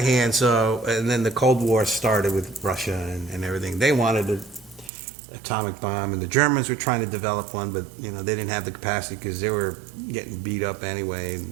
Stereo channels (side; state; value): left; drops out; at 4.9 s